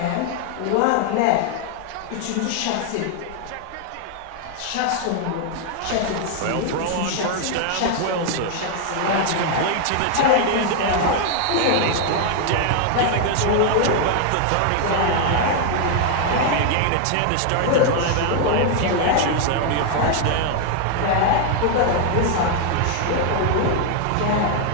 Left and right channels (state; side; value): different; both; correlation 0.00